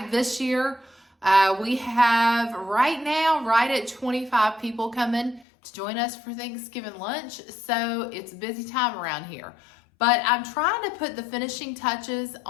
this year we have right at 25 people coming to join us for Thanksgiving lunch, so it's a busy time around here. But I'm trying to put the finishing touches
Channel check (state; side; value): drops out; right; at 5.5 s